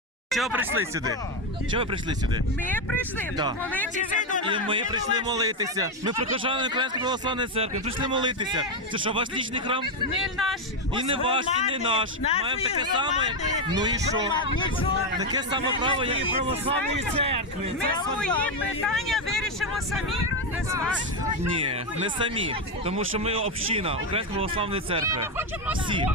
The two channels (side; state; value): both; normal; correlation 0.07